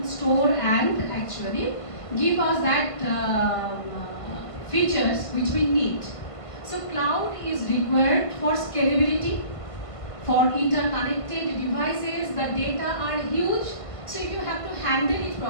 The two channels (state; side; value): late; right; 1.5 ms